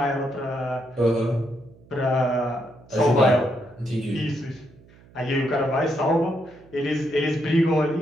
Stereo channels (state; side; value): noise; right; hum, 25 dB below the sound